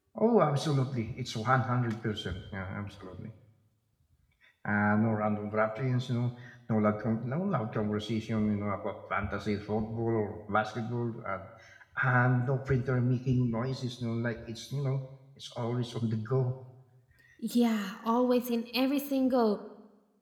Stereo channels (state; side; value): identical; both; correlation 1.00